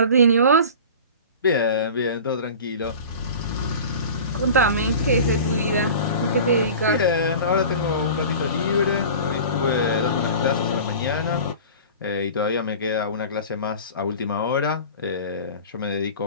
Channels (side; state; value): both; inverted; correlation -0.37